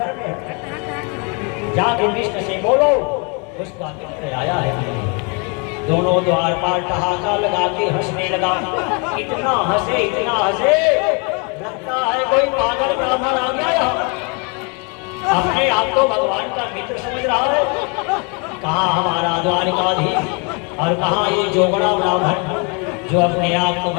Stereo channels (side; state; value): right; quieter; 33.7 dB